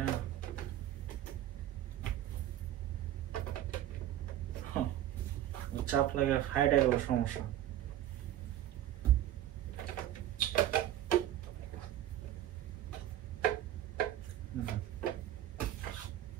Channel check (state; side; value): quieter; left; 12.5 dB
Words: চাপ লাগে, ফাইট গেল, সমস্যা।